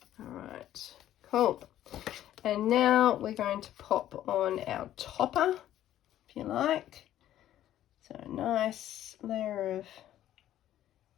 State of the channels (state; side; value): quieter; right; 12.4 dB